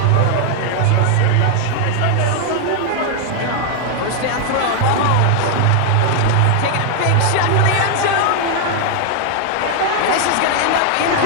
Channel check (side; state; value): both; different; correlation 0.00